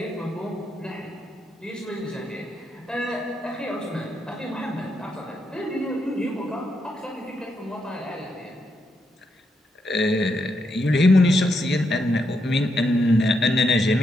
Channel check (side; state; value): both; normal; correlation 0.81